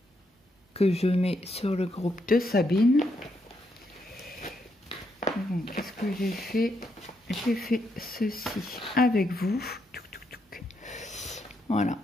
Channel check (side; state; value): both; normal; correlation 0.78